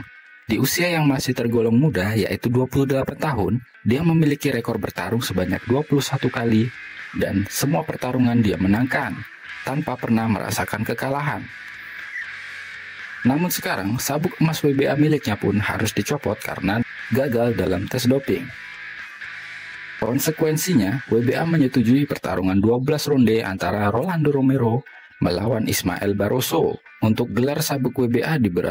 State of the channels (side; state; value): both; identical; correlation 1.00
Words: Di usia yang masih tergolong muda, yaitu 28 tahun, dia memiliki rekor bertarung sebanyak 21 kali dan semua pertarungan dia menangkan tanpa pernah merasakan kekalahan. Namun sekarang, sabuk emas WBA miliknya pun harus dicopot karena gagal dalam tes doping. Konsekuensinya, WBA menyetujui pertarungan 12 ronde antara Rolando Romero melawan Ismael Barroso untuk gelar sabuk WBA di